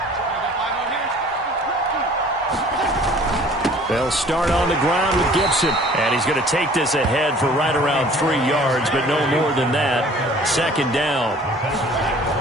They'll start on the ground with Gibson. And he's going to take this ahead for right around 3 yards, but no more than that. 2nd down.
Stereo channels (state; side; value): normal; both; correlation 0.51